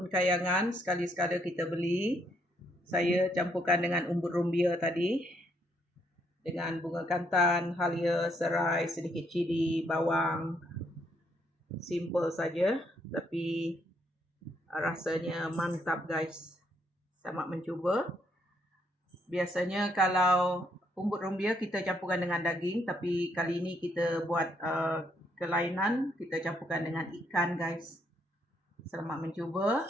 kayangan, sekali-sekala kita beli. Saya campurkan dengan umbut rumbia tadi, dengan bunga kantan, halia, serai, sedikit cili, bawang. Simple saja, tapi rasanya mantap guys. Selamat mencuba. Biasanya kalau umbut rumbia kita campurkan dengan daging, tapi kali ini kita buat kelainan, kita campurkan dengan ikan guys. Selamat mencuba.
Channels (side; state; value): both; normal; correlation 0.72